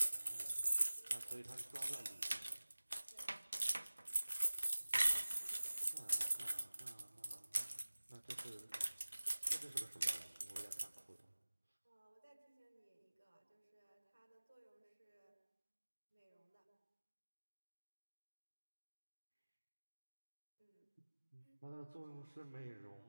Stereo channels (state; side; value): inverted; both; correlation -1.00